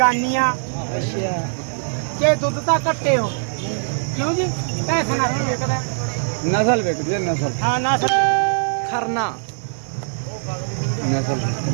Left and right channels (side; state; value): left; silent; 61 dB below the other